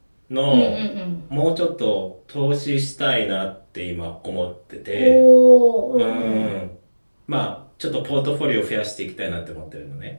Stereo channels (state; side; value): inverted; both; correlation -1.00